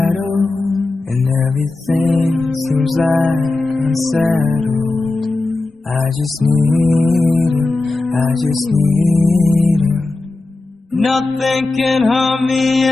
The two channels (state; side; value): quieter; right; 3.2 dB